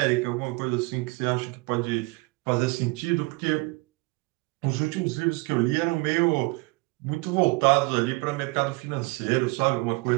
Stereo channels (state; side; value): quieter; left; 25.4 dB